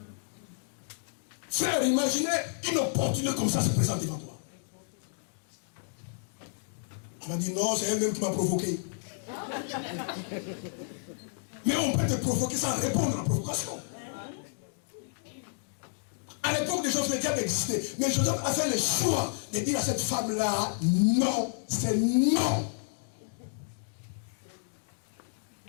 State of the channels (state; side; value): silent; right; digital silence